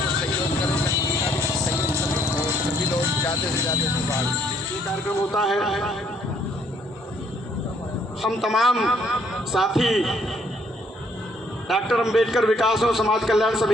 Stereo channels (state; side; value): normal; both; correlation 0.67